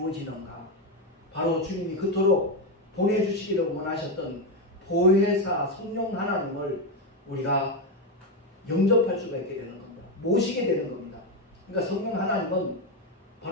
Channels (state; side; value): normal; both; correlation 0.09